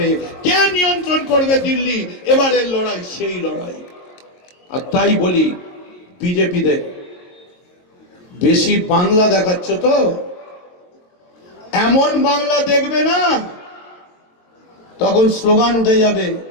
কে নিয়ন্ত্রণ করবে দিল্লি? এবারের লড়াই সেই লড়াই। আর তাই বলি বিজেপিদের, বেশি বাংলা দেখাচ্ছ তো, এমন বাংলা দেখবে না, তখন স্লোগান উঠে যাবে,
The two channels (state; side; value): late; right; 22 ms